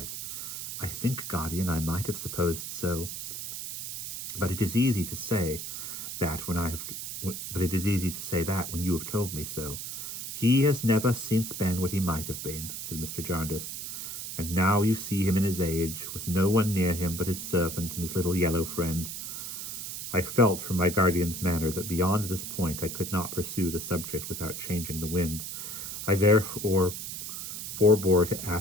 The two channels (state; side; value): noise; right; hiss, 7 dB below the sound